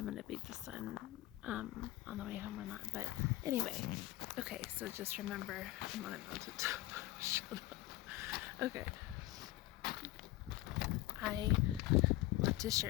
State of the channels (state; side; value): quieter; right; 17.0 dB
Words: going to beat the sun on the way home or not. But anyway, okay, so just remember I'm on a mountaintop. Shut up. Okay. I want to